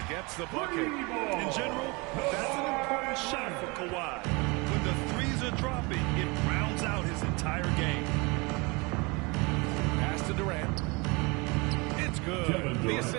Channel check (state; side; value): quieter; left; 27.3 dB